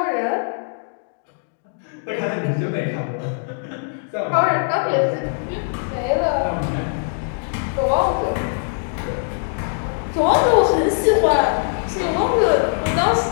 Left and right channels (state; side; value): silent; right; 62 dB below the other